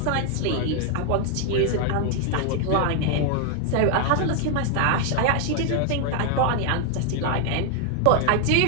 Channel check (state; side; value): different; both; correlation 0.00